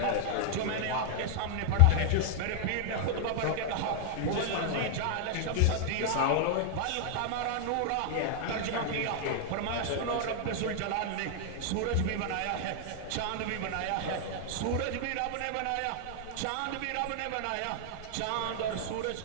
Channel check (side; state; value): both; different; correlation -0.01